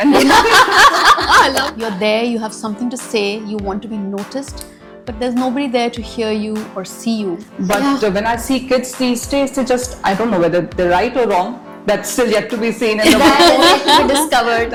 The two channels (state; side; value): identical; both; correlation 1.00